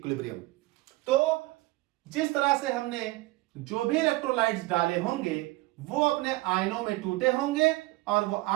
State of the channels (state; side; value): quieter; left; 20.4 dB